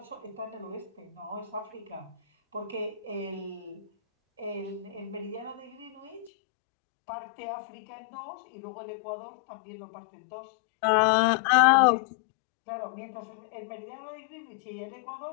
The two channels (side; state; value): right; drops out; at 6.3 s